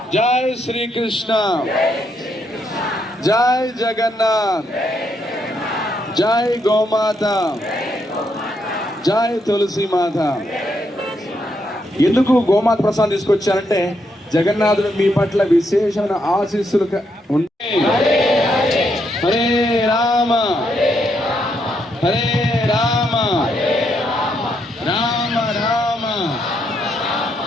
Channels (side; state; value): both; normal; correlation 0.77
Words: జై శ్రీకృష్ణ జై జగన్నాథ్ జై గోమాత జై తులసి మాత. ఎందుకు గోమాత ప్రసాదం తీసుకొచ్చారంటే జగన్నాథుడు మీ పట్ల విశేషమైన ఆశీస్సులు ఉంటాయి. హరే రామ హరే రామ రామ రామ